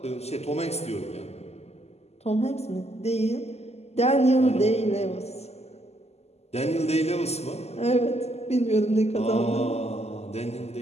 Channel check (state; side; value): late; right; 0.30 ms